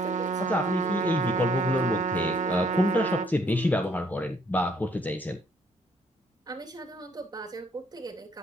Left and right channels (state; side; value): normal; both; correlation 0.65